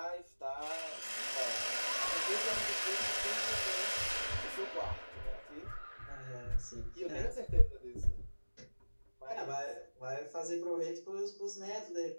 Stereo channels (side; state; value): both; inverted; correlation -1.00